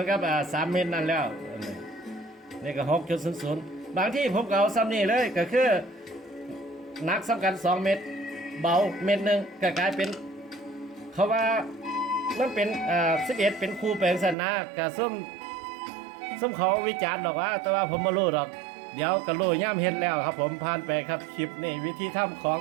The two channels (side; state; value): left; drops out; at 14.4 s